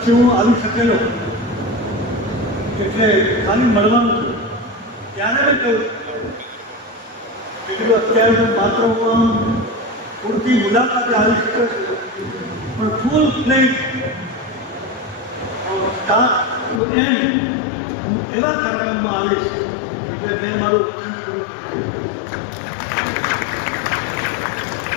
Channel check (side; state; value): right; drops out; at 16.8 s